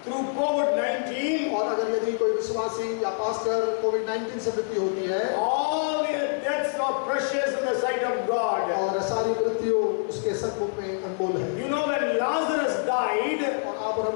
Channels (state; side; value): silent; right; 61 dB below the other